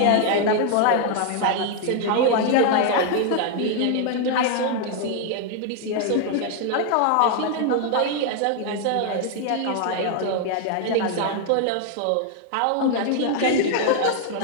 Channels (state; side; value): different; both; correlation 0.00